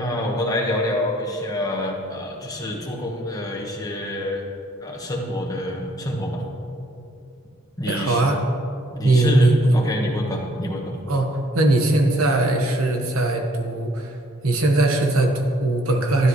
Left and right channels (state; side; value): normal; both; correlation 0.64